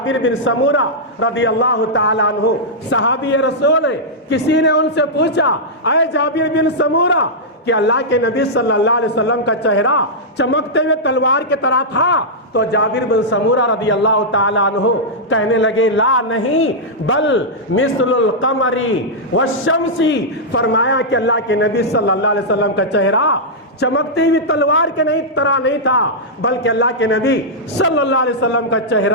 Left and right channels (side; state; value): both; normal; correlation -0.09